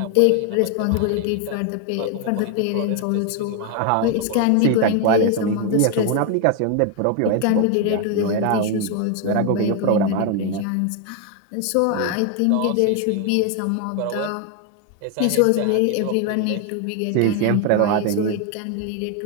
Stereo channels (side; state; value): both; different; correlation 0.01